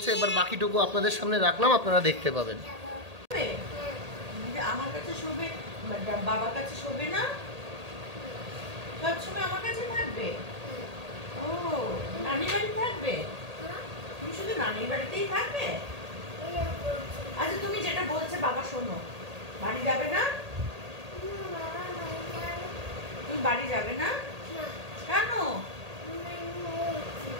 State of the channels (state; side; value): late; left; 1.8 ms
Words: এবার বাকিটুকু আপনাদের সামনে রাখলাম, আপনারা দেখতে পাবেন। আমার কাছে শোবে, বাবার কাছে শোবে না, সবসময় আমার কাছে থাকবে। ও নানির বাড়ি থাকবে? তুমি শুধু নানির বাড়িতেই থাকবে? আচ্ছা তুমি যেটা বলছে বাবা শোনো, বাড়ি যাবে না? তুমি বাড়ি যাবে না কেন?